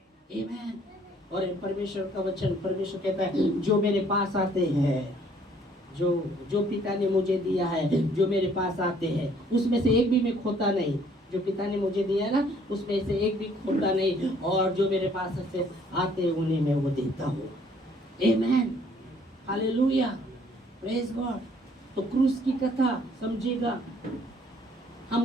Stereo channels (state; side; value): normal; both; correlation 0.61